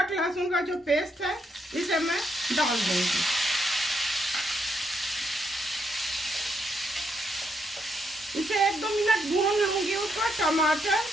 लहसुन का जो पेस्ट है इसे मैं डाल दूंगी। इसे 1-2 मिनट भून लूंगी। उसमें टमाटर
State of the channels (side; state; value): both; normal; correlation 0.77